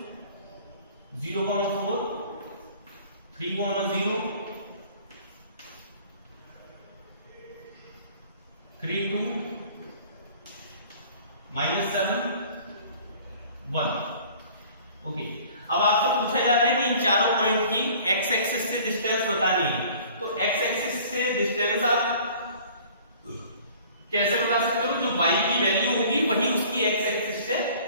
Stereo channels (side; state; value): both; inverted; correlation -0.50